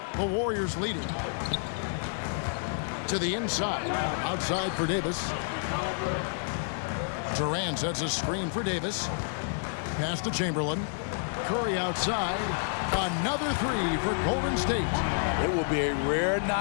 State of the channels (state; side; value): silent; right; 58 dB below the other